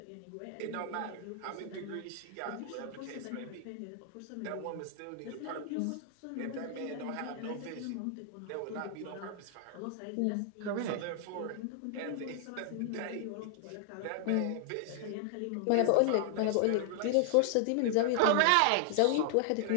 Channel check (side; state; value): both; different; correlation 0.00